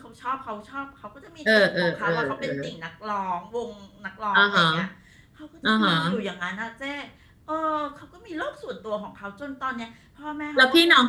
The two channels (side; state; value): both; identical; correlation 1.00